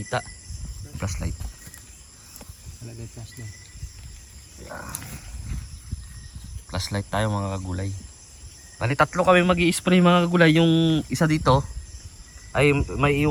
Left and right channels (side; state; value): both; identical; correlation 1.00